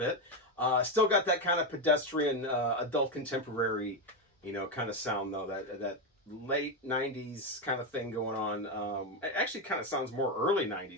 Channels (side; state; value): both; normal; correlation 0.09